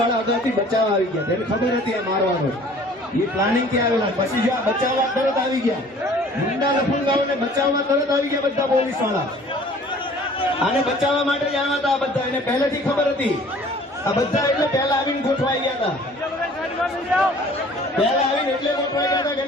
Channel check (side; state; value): both; normal; correlation 0.51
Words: અગાઉથી બચાવવા આવી ગયા, તેને ખબર હતી આ મારવાનો, એ પ્લાનિંગ થી આવેલા. પછી જો આ બચાવવા તરત આવી ગયા, ગુંડા લફંગાઓને બચાવવા તરત આવી ગયા બધા પોલીસ વાળા. આને બચાવવા માટે જ આવ્યા હતા આ બધા, એને પહેલેથી ખબર હતી. આ બધા એટલે પહેલા આવીને ગોઠવાઈ ગયા હતા, પહેલા આવીને એટલે ગોઠવાઈ ગયા હતા કે